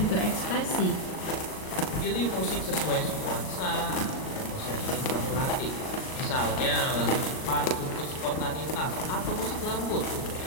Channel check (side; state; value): right; late; 38 ms